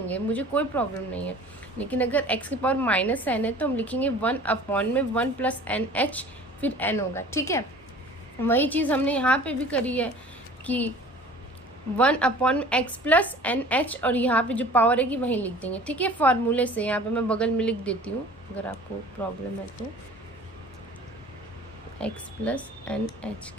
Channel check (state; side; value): normal; both; correlation 0.45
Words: मुझे कोई प्रॉब्लम नहीं है। लेकिन अगर x की पावर माइनस n है तो हम लिखेंगे 1/1 प्लस एन एच, फिर n होगा। ठीक है, वही चीज़ हमने यहाँ पे भी करी है कि 1/x प्लस एन एच, और यहाँ पे जो पावर है कि वहीं लिख देंगे। ठीक है, फॉर्मूले से यहाँ पे मैं बगल में लिख देती हूँ अगर आपको प्रॉब्लम है तो, x प्लस एन एच